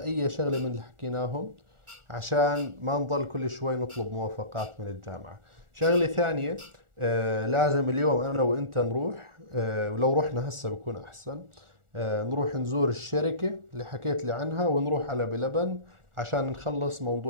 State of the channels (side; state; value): left; late; 1.4 ms